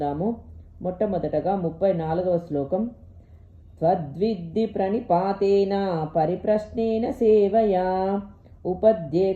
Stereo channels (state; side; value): identical; both; correlation 1.00